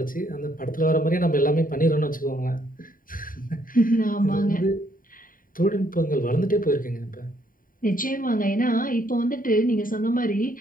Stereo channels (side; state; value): right; late; 0.41 ms